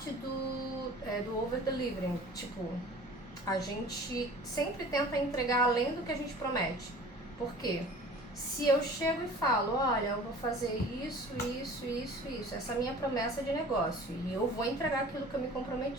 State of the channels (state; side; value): normal; both; correlation 0.44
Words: do over-delivering. Tipo, a gente sempre tenta entregar além do que a gente promete. Por quê? Se eu chego e falo, olha, eu vou fazer isso, isso, isso, isso, essa é a minha promessa de negócio e eu vou entregar aquilo que eu me